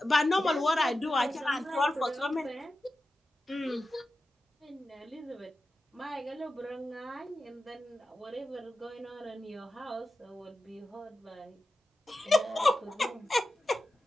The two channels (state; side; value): normal; both; correlation 0.92